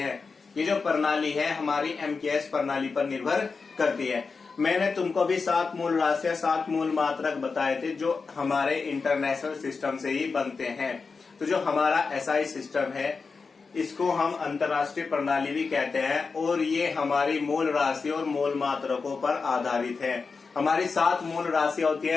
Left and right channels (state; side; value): quieter; right; 4.7 dB